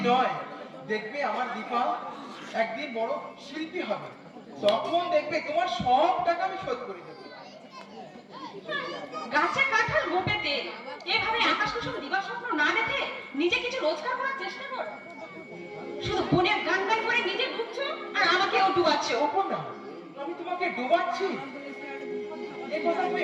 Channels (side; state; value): both; identical; correlation 1.00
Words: নয়। দেখবে আমার দীপা একদিন বড় শিল্পী হবে, তখন দেখবে তোমার সব টাকা আমি শোধ করে দেবো। গাছে কাঁঠাল গোপে তেল, এভাবে আকাশ কুসুম দিবার স্বপ্ন না দেখে নিজে কিছু রোজগার করার চেষ্টা কর। শুধু বোনের গান গান করে নিজে ঢুকছো আর আমাকেও ডুবাচ্ছো। কখন না আমি তোমাকে ডোবাচ্ছি, এই কথা